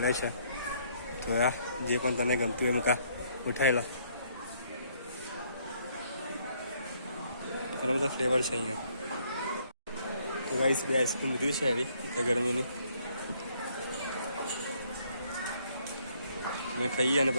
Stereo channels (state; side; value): inverted; both; correlation -0.67